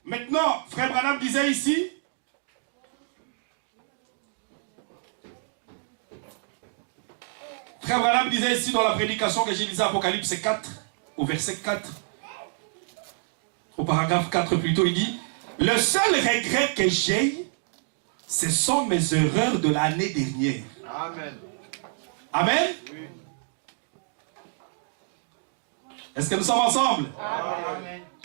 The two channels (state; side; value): silent; left; digital silence